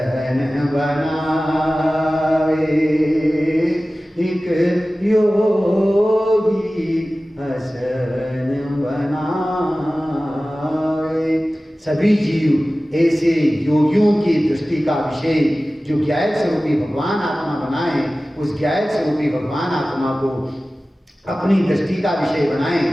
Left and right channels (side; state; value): both; normal; correlation 0.96